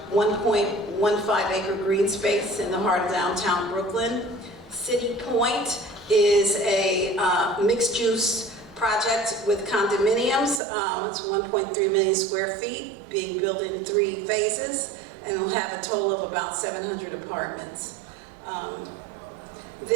1.15 acre green space in the heart of downtown Brooklyn. City Point is a mixed-use project with condominiums. It's 1.3 million square feet, being built in 3 phases, and it'll have a total of about 700 apartments. And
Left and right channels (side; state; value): left; drops out; at 10.6 s